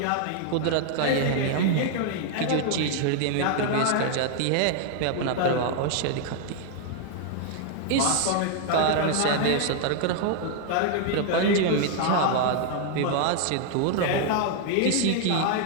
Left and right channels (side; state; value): both; different; correlation 0.00